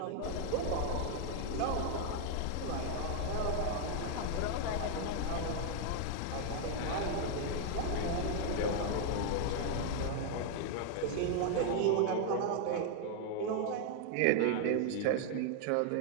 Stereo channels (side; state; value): both; different; correlation 0.00